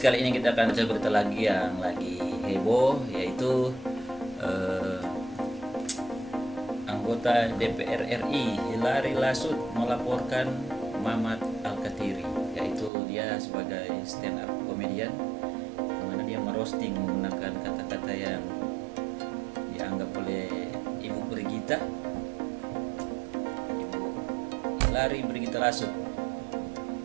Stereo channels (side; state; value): left; drops out; at 12.9 s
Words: ini kita akan baca berita lagi yang lagi heboh, yaitu anggota DPR RI Hilary Lasut melaporkan Mamat Alkatiri, yaitu dia sebagai stand up comedian, di mana dia merosting menggunakan kata-kata yang dianggap oleh Ibu Brigita, Ibu Hilary Brigita Lasut